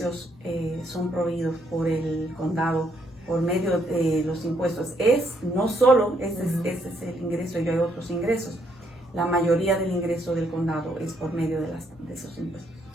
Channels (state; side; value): normal; both; correlation 0.72